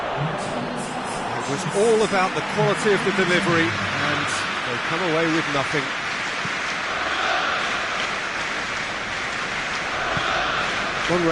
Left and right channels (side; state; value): both; identical; correlation 1.00